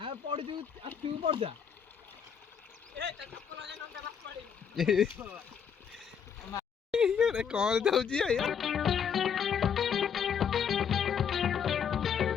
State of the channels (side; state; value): right; quieter; 7.4 dB